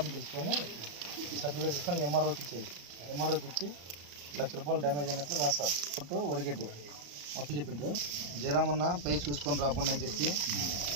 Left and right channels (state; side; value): late; left; 34 ms